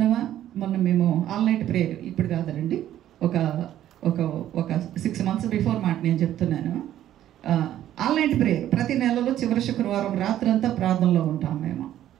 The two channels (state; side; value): quieter; left; 12.1 dB